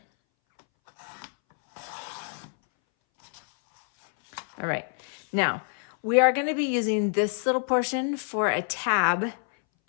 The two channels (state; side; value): silent; right; 60 dB below the other